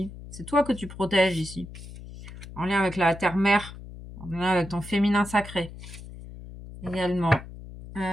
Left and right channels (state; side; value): noise; left; hum, 14 dB below the sound